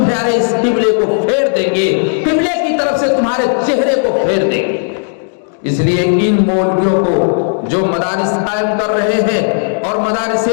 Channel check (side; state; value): right; silent; digital silence